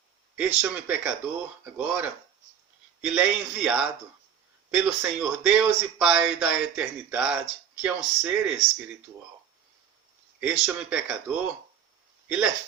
este homem pecador, agora, ele é enviado pelo Senhor Deus e Pai da eternidade, que é um ser espiritual. Este homem pecador, ele é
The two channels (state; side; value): quieter; left; 8.5 dB